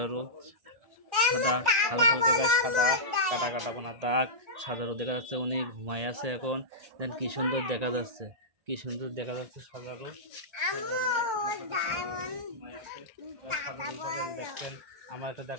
সাদা, হালকা হালকা গায়ে সাদা, কাটা কাটা কোনা দাগ। সাজারও দেখা যাচ্ছে, উনি ঘুমায় আছে এখন। দেন কি সুন্দর দেখা যাচ্ছে, কি সুন্দর দেখা যাচ্ছে সাজারও। দেখছেন আমার একটা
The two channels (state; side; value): late; left; 1.4 ms